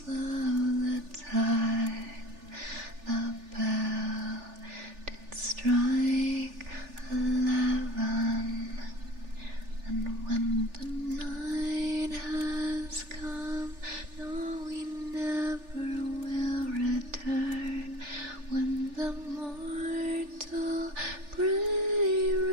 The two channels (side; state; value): left; late; 3.4 ms